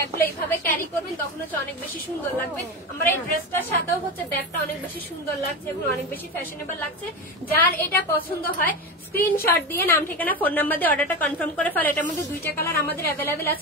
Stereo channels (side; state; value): both; normal; correlation 0.21